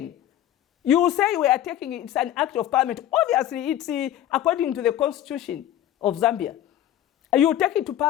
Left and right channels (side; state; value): right; quieter; 12.1 dB